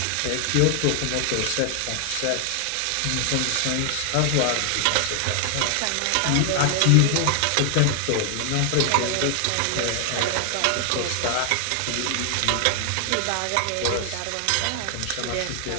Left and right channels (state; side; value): different; both; correlation 0.00